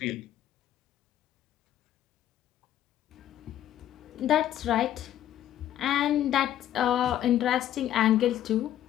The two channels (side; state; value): right; quieter; 11.9 dB